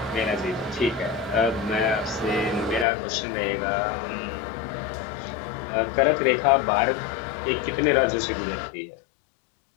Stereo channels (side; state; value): right; drops out; at 2.9 s